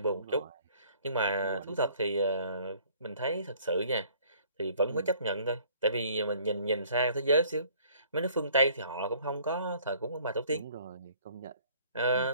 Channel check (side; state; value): both; inverted; correlation -0.57